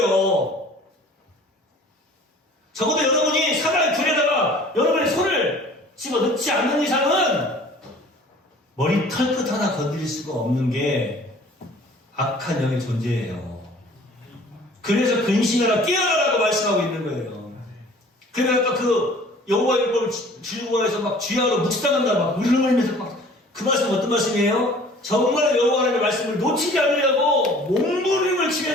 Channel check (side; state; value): both; normal; correlation 0.50